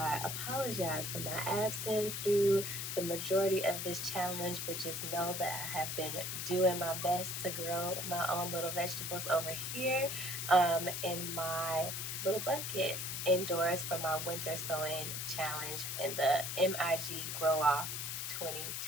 apologize for my absence through the majority of this challenge, but just know that I have been doing my best to grow my own little vegetables over here in my little bucket indoors for my winter sowing challenge in the MIG Grow Off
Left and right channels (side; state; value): left; noise; hiss, 3 dB below the sound